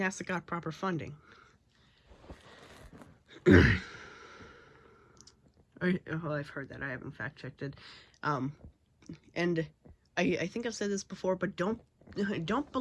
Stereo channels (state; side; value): identical; both; correlation 1.00